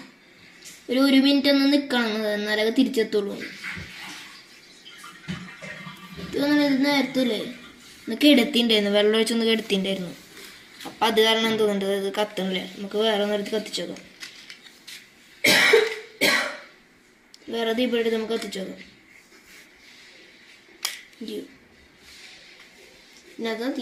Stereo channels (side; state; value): both; identical; correlation 1.00